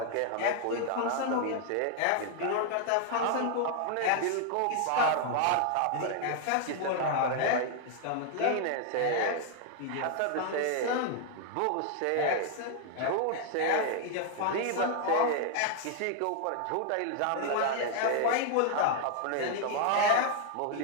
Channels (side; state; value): both; different; correlation 0.00